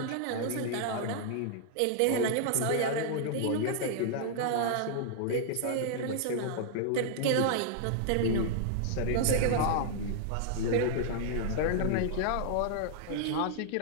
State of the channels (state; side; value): different; both; correlation -0.01